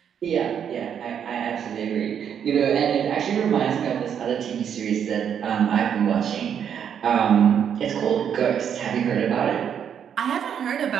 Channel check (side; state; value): left; quieter; 8.3 dB